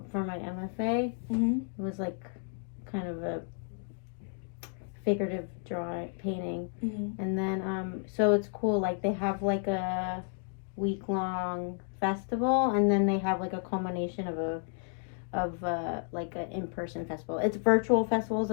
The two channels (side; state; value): right; silent; 57 dB below the other